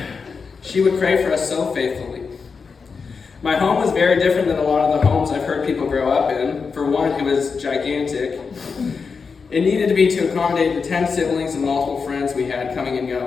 She would pray for us so faithfully. My home was very different than a lot of the homes I've heard people grow up in. For one, it was gigantic. It needed to be to accommodate the 10 siblings and multiple friends we had coming and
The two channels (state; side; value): quieter; right; 5.2 dB